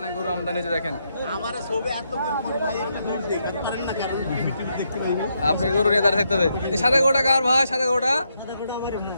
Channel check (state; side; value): inverted; both; correlation -0.79